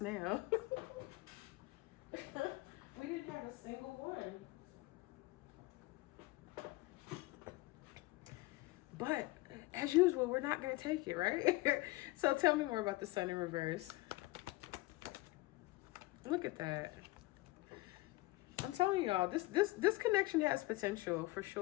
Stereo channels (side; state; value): right; quieter; 20.8 dB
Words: now. We didn't have a single one. But as usual, we're not going to take it, right? So tell me more about the Sun in reverse. Look at that. I'm telling y'all, this connection has potential for